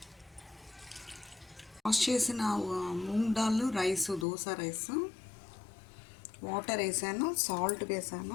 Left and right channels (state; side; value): drops out; right; at 4.2 s